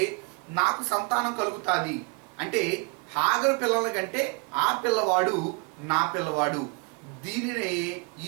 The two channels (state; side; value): quieter; left; 31.3 dB